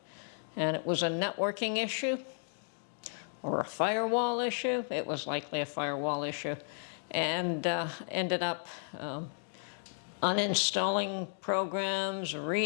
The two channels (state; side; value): silent; right; digital silence